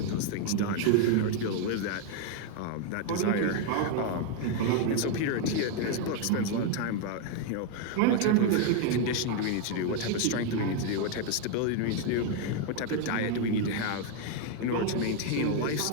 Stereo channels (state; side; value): different; both; correlation 0.01